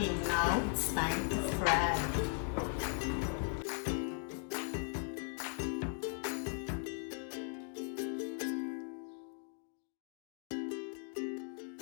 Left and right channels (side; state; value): right; silent; 52 dB below the other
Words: now. It's time to fry.